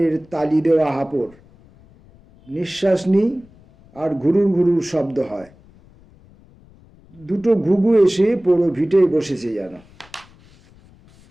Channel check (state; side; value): noise; left; rumble, 27 dB below the sound